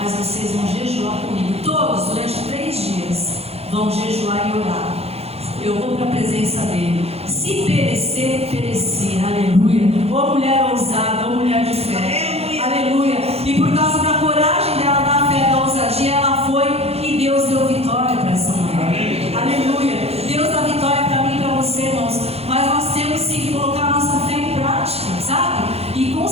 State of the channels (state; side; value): late; left; 0.29 ms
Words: vocês vão jejuar comigo. Todos, durante 3 dias, vão jejuar e orar. Eu vou para a presença dele. Se perecer, perecer. Aleluia. Ô mulher ousada, ô mulher de fé. Aleluia. E por causa da coragem dela, da fé, da ousadia, ela foi e Deus deu vitória para essa mulher. Aleluia. Deus dá vitória para mim e para você, irmãos. Mas nós temos sim que colocar a nossa fé em prática, sabe? E com